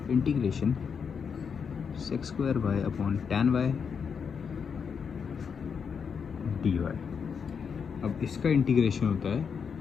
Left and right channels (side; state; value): right; quieter; 6.4 dB